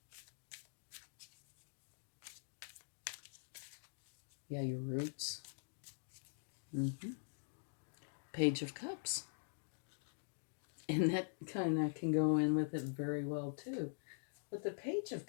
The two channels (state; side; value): silent; right; digital silence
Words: Yeah, your roots. Page of Cups. And that kind of can go in with it very well, too. What the Page of